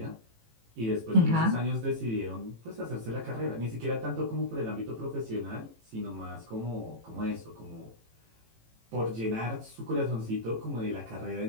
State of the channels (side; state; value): left; late; 18 ms